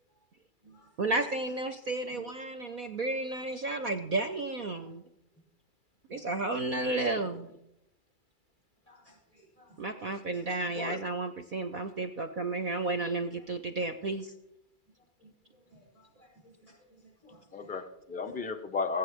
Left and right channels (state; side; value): late; left; 2.3 ms